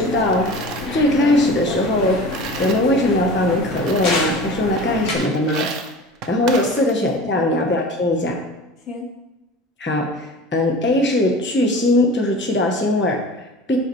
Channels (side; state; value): both; normal; correlation 0.37